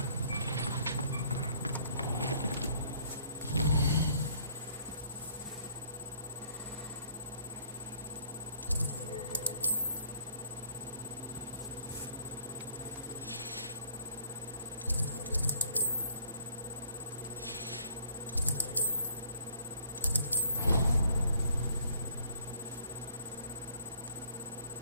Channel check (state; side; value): inverted; both; correlation -0.61